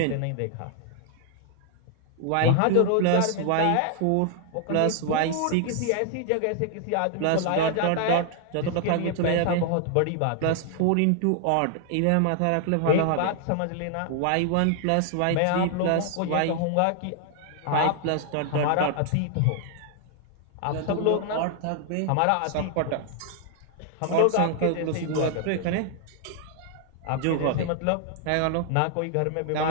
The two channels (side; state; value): both; different; correlation 0.00